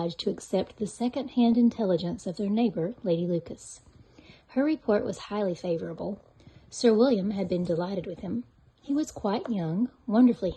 to accept the second-hand intelligence of their neighbour, Lady Lucas. Her report was highly favourable. Sir William had been delighted with him. He was quite young, wonderfully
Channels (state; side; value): identical; both; correlation 1.00